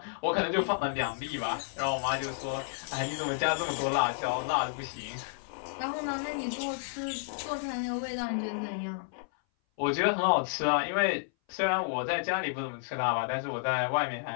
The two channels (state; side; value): silent; right; 57 dB below the other